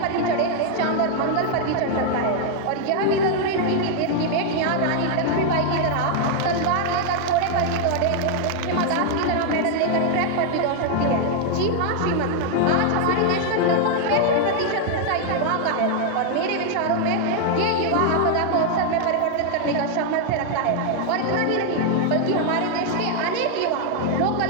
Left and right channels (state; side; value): different; both; correlation 0.00